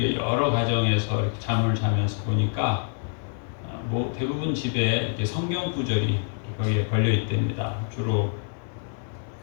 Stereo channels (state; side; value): silent; right; 61 dB below the other